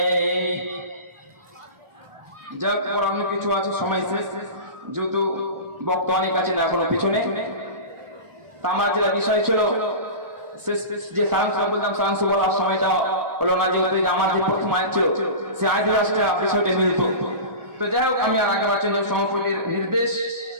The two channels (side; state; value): left; late; 1.4 ms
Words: যাক, অন্য কিছু আছে, সময় শেষ, যেহেতু বক্তা অনেক আছে না এখনো পিছনে। তা আমার যেটা বিষয় ছিল যে সায়েন্স বলতাম, সায়েন্স বলার সময়টা হলো না, যেহেতু আমার যে প্রথম আয়াত ছিল সে আয়াতের রাষ্ট্রে আপনার সাথে মিলিত। তো যাই হোক, আমি আর আগে বাড়ছেন যে সমাপনীর নির্দেশ,